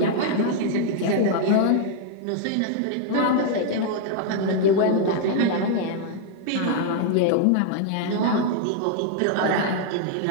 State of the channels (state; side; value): different; both; correlation -0.01